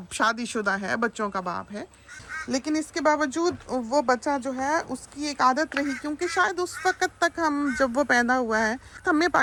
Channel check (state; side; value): identical; both; correlation 1.00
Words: शादीशुदा है, बच्चों का बाप है, लेकिन इसके बावजूद वो बच्चा जो है उसकी एक आदत रही, क्योंकि शायद उस वक़्त तक हम जब वो पैदा हुआ है हमें